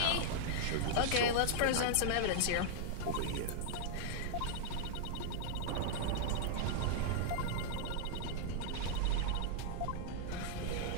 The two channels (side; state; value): both; different; correlation -0.01